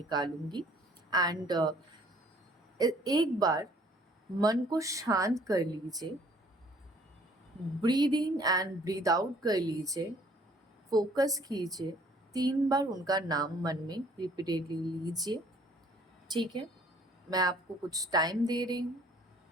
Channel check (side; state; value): both; normal; correlation 0.58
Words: एंड एक बार मन को शांत कर लीजिए, breathe in and breathe out कर लीजिए, फोकस कीजिए, 3 बार उनका नाम मन में रिपीटेडली लीजिए, ठीक है। मैं आपको कुछ टाइम दे रही हूँ,